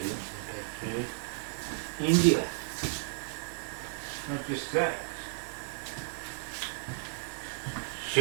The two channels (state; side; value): silent; left; 56 dB below the other